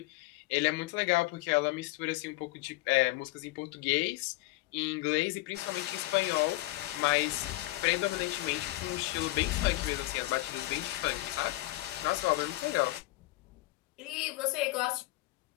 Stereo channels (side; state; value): right; quieter; 19.2 dB